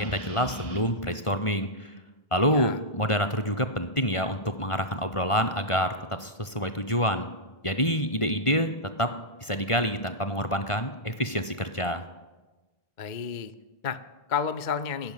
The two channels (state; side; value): late; right; 1.5 ms